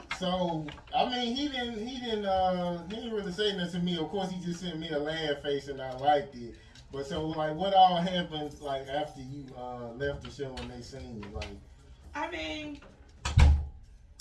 So, I mean, he didn't really say nothing to me. Of course, he just sent me a laugh face, and I liked it. But so, like, what all happened like after you left the show and they seen you? Like, I mean,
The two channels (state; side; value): identical; both; correlation 1.00